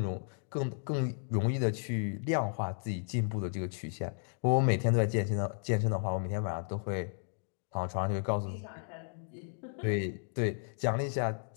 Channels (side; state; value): right; silent; digital silence